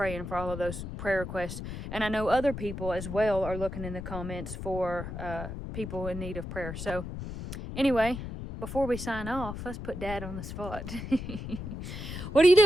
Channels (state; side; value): noise; left; rumble, 8 dB below the sound